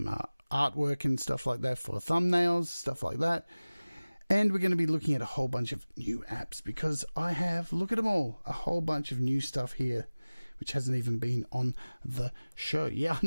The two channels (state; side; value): inverted; both; correlation -1.00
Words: artwork and stuff like that for thumbnails, stuff like that. And we're going to be looking at a whole bunch of new apps because I have, look at them all, a whole bunch of new stuff here, which hasn't even been on the show. Yeah,